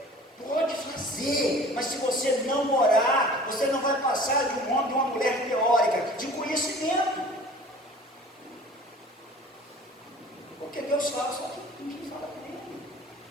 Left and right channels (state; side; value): normal; both; correlation 0.45